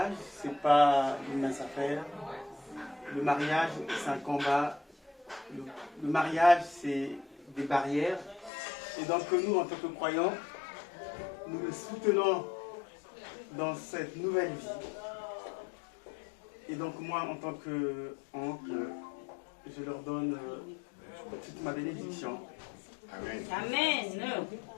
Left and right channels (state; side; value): drops out; right; at 8.5 s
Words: c'est pas une mince affaire. Le mariage, c'est un combat. Le mariage, c'est des barrières. Et donc nous, en tant que croyants, nous le soutenons dans cette nouvelle vie. Et donc moi, en tant qu'oncle, je leur donne toute ma bénédiction. Amen.